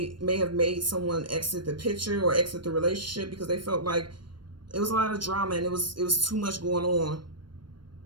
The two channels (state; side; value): late; left; 0.72 ms